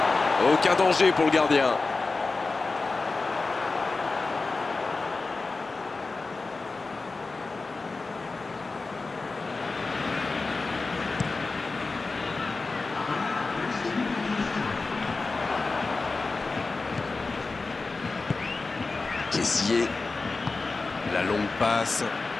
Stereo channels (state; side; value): quieter; right; 3.8 dB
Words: Aucun danger pour le gardien. Kessié. La longue passe.